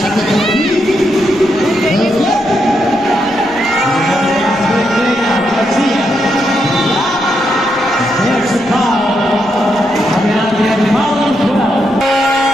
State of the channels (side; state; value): right; noise; rumble, 24 dB below the sound